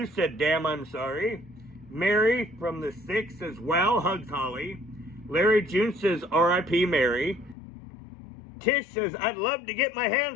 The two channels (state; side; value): drops out; right; at 7.6 s